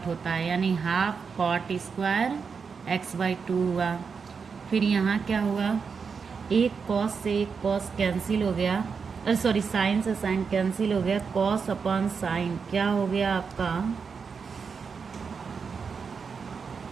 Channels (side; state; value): left; quieter; 5.7 dB